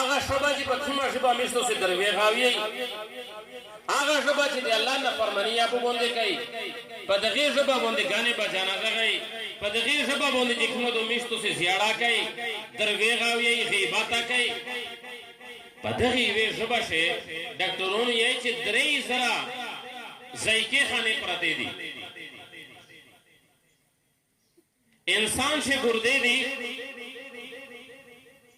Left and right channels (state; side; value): identical; both; correlation 1.00